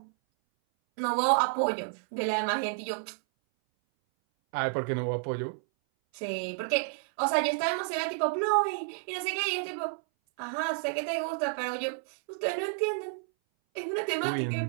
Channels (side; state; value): left; silent; 58 dB below the other